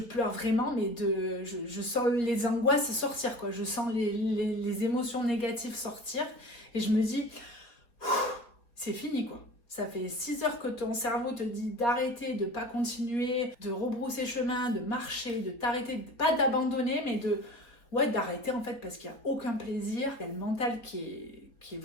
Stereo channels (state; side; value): late; right; 4.0 ms